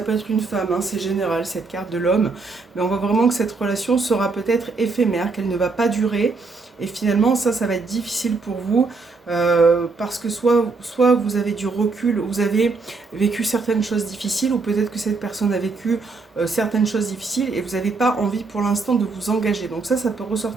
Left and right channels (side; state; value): left; quieter; 4.1 dB